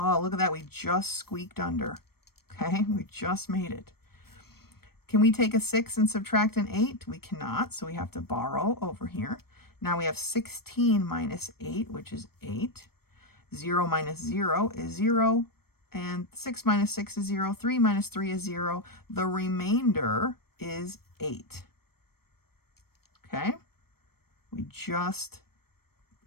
look at that. We just squeaked under. Okay, we just made it. Can we take a 6 and subtract an 8? We cannot, so we have to borrow over here. Now we have 16 minus 8, which is 8. 0 minus 0 is 0. And 6 minus 6 is 0. 3 minus 3 is 0. The remainder is 8. Okay? We just,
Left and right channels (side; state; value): right; late; 0.95 ms